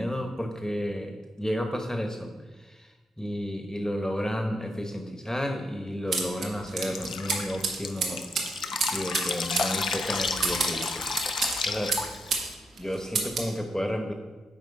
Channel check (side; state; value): both; normal; correlation 0.81